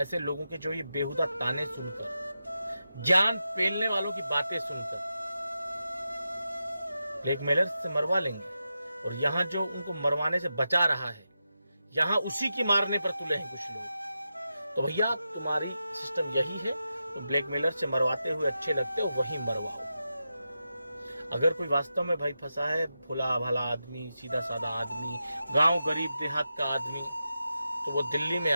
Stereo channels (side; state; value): both; inverted; correlation -0.89